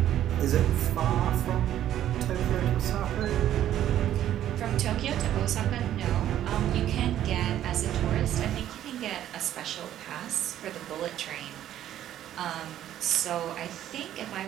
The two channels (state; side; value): quieter; left; 11.7 dB